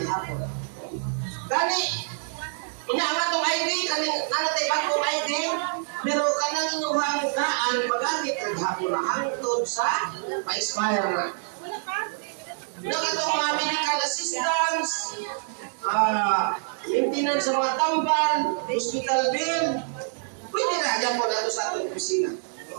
gihapon. Gani, inaangat tong ID, kaning nanatay bagong ID, pero kanang inyong daan magamit ang hapon na hangtod sa pa-expire na. Nakatong mga medical assistance, maintenance sa mga tambal, hospital bill, pwede na dyan po nato sa atong opisina.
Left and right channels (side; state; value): left; silent; digital silence